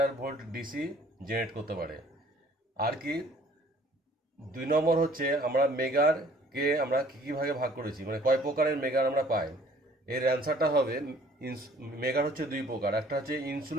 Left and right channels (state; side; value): normal; both; correlation 0.56